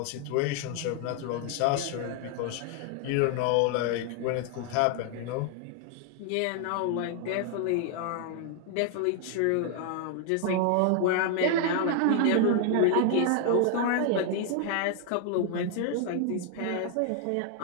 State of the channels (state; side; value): different; both; correlation 0.00